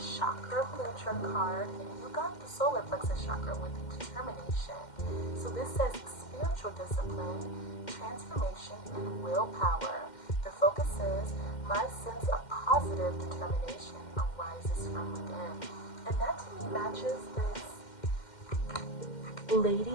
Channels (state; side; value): late; right; 2.1 ms